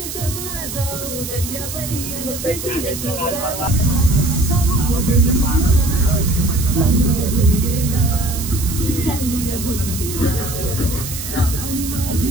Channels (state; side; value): noise; right; hiss, 8 dB below the sound